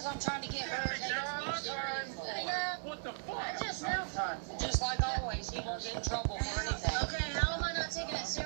I'm trying to get her. What the fuck? I just know. Just like always, he won't get in trouble for anything. Okay, how am I not taking it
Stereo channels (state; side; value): silent; left; digital silence